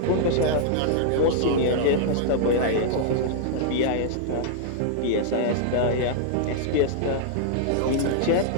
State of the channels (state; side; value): different; both; correlation -0.01